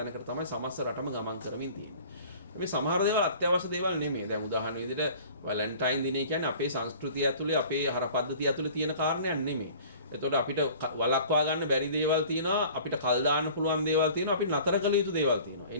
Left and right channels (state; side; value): inverted; both; correlation -0.46